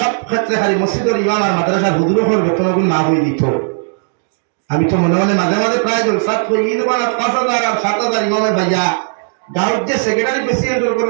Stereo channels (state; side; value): silent; left; digital silence